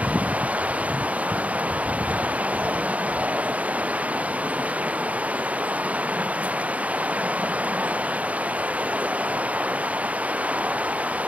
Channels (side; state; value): left; late; 0.069 ms